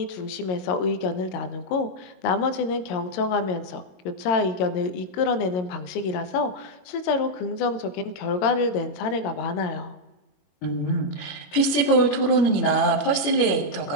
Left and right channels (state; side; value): late; right; 21 ms